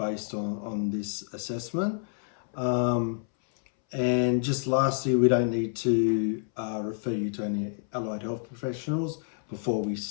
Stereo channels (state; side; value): silent; right; 59 dB below the other